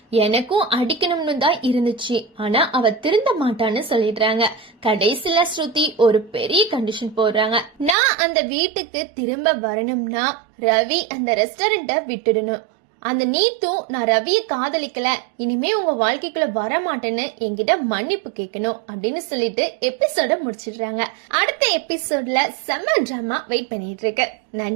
எனக்கும் அடிக்கணும்னு தான் இருந்துச்சு, ஆனா அவ திருந்த மாட்டான்னு சொல்லிடுறாங்க. கடைசியில ஸ்ருதி ஒரு பெரிய கண்டிஷன் போடுறாங்க. நான் அந்த வீட்டுக்கு திரும்ப வரணும்னா ரவி அந்த ரெஸ்டாரண்ட விட்டுடணும். அந்த நீத்தும் நான் ரவியை காதலிக்கல, இனிமே உங்க வாழ்க்கைக்குள்ள வர மாட்டேன்னு என்கிட்ட மன்னிப்பு கேட்கணும் அப்படின்னு சொல்லிட்டு எபிசோட முடிச்சிடுறாங்க. அடுத்த எபிசோட்ல செம்ம டிராமா வெயிட் பண்ணிட்டு இருக்கு.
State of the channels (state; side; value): drops out; left; at 8.0 s